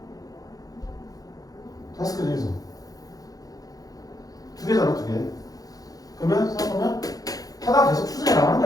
5개 중에서 2개잖아, 2개. 그러면 생각하면 하다 계속 추정해 나가는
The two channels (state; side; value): late; right; 0.18 ms